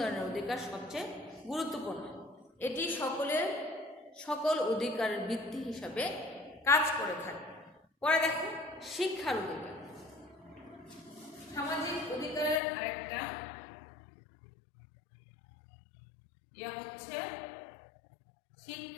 অধিকার সবচেয়ে গুরুত্বপূর্ণ। এটি সকল অধিকারের ভিত্তি হিসাবে কাজ করে থাকে। পরে দেখো শিক্ষার অধিকার। সামাজিক অধিকারের আরেকটা হচ্ছে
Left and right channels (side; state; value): right; drops out; at 12.6 s